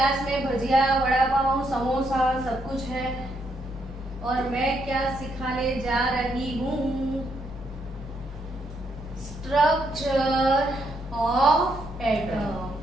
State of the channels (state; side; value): normal; both; correlation 0.76